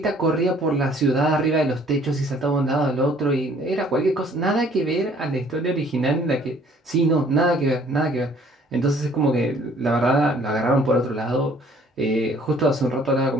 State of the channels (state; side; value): normal; both; correlation 0.58